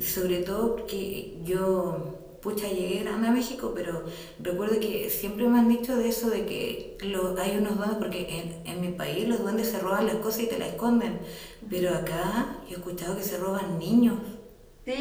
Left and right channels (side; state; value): both; identical; correlation 1.00